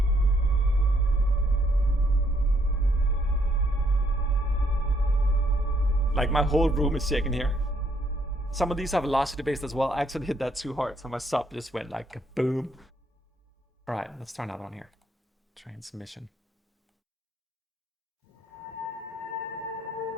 Like my whole room is shaking here. Some of these are velocity based as well. I actually hit that too hard, so my sub just went like boom. All right, let's try another one here. Transmission.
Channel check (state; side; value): normal; both; correlation 0.70